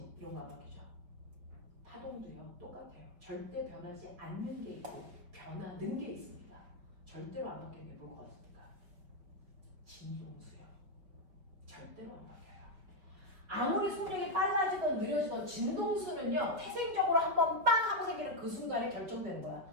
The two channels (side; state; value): left; late; 5.2 ms